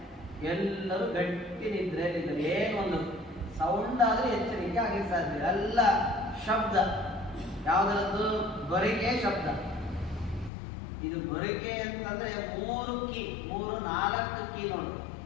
ಎಲ್ಲರೂ ಗಟ್ಟಿ ನಿದ್ರೆಯಲ್ಲಿದ್ದಾರೆ. ಏನೊಂದು ಸೌಂಡ್ ಆದ್ರೆ ಎಚ್ಚರಿಕೆ ಆಗಿ ಸಾಧ್ಯ. ಎಲ್ಲ ಶಬ್ದ, ಯಾವುದರದ್ದು? ಗೊರಿಕೆ ಶಬ್ದ. ಇದು ಗೊರಿಕೆ ಅಂತಂದ್ರೆ 3-4 ಕೀ ನೋಡು,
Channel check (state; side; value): drops out; right; at 10.5 s